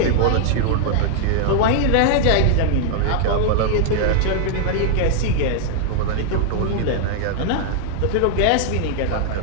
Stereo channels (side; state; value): both; different; correlation -0.01